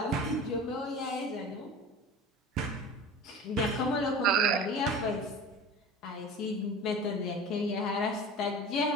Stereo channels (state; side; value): normal; both; correlation 0.36